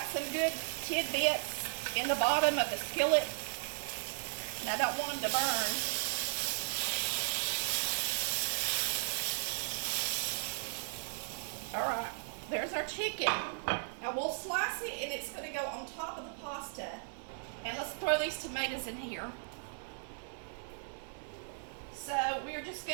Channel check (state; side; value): silent; left; digital silence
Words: some good tidbits in the bottom of the skillet, and I don't want them to burn. All right, there's our chicken. Now we'll slice it, and it's going to go on top of the pasta. And let's throw these tomatoes in here. So we're just